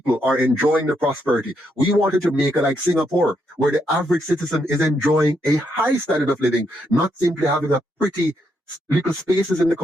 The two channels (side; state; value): both; normal; correlation 0.78